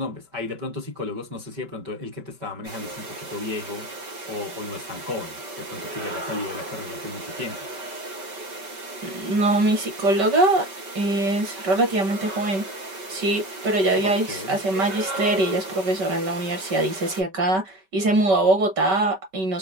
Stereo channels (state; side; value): late; left; 5.2 ms